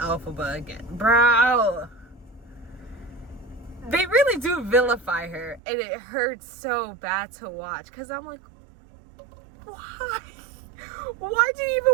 again. Bro! They really do vilify her, and it hurts so bad to watch, because I'm like, why? Why do you even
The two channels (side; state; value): left; drops out; at 5.6 s